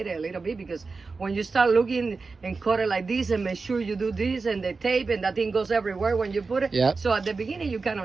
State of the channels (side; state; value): left; quieter; 4.3 dB